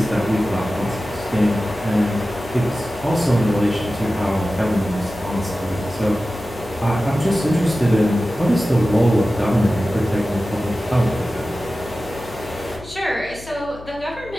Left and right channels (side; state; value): left; noise; hum, 17 dB below the sound